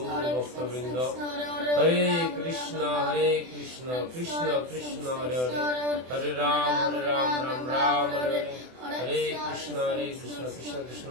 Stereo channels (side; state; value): left; late; 24 ms